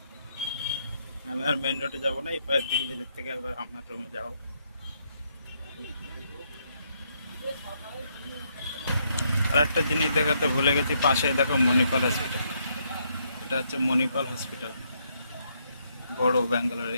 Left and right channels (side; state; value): both; inverted; correlation -0.75